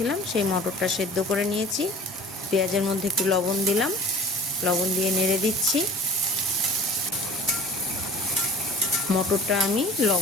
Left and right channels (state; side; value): normal; both; correlation 0.43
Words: সেই মটরটা সেদ্ধ করে নিয়েছি। পেঁয়াজের মধ্যে একটু লবণ দিলাম, লবণ দিয়ে নেড়ে দিচ্ছি। মটরটা আমি